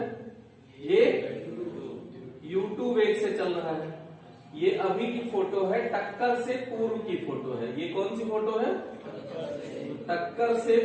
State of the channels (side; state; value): both; identical; correlation 1.00